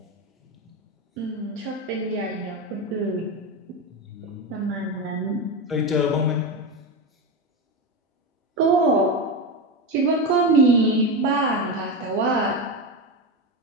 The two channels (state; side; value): normal; both; correlation 0.16